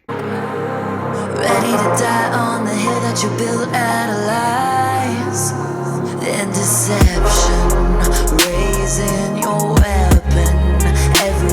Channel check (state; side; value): identical; both; correlation 1.00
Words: Ready to die on the hill that you built out of lies and deception, raising your weapon.